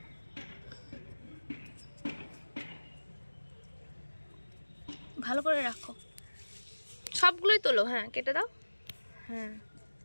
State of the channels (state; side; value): inverted; both; correlation -1.00